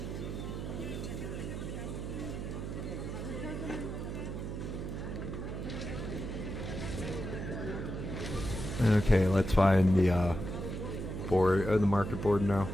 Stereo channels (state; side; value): noise; right; hum, 5 dB below the sound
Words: Okay, let's find the board, the market board now.